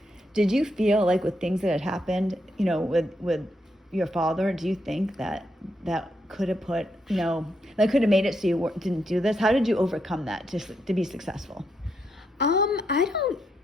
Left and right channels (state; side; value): normal; both; correlation 0.80